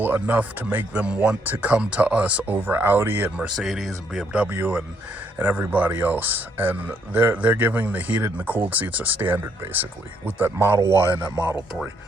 enough to make them want to come to us over Audi and Mercedes and BMW and everybody else. And they're giving the heated and the cooled seats a standard, basically, with that Model Y and that Model 3.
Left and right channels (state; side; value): normal; both; correlation 0.71